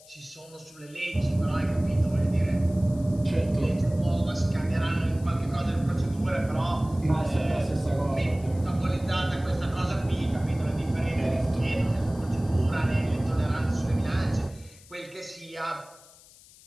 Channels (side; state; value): left; noise; hiss, 24 dB below the sound